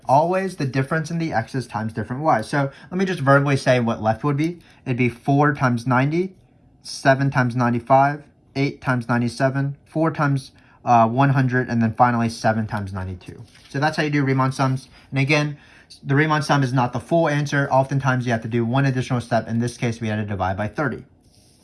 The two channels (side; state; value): both; identical; correlation 1.00